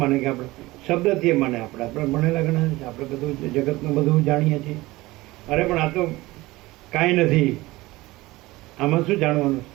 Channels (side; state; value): left; quieter; 19.7 dB